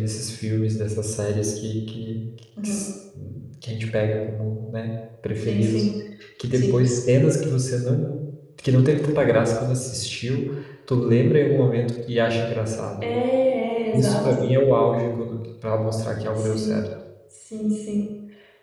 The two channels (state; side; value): identical; both; correlation 1.00